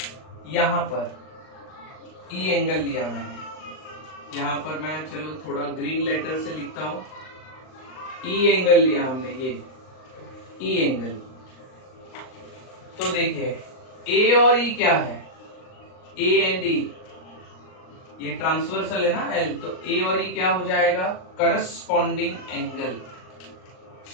यहाँ पर ई एंगल लिया मैंने। यहाँ पर मैं चलो थोड़ा ग्रीन लेटर से लिखता हूं, ई एंगल लिया हमने, ये ई एंगल। तो देखिए ए और ई क्या है, ए एंड ई, ये ट्रांसवर्सल है ना एल, तो ए और ई क्या हो जाएगा, corresponding angle.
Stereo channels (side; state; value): right; late; 38 ms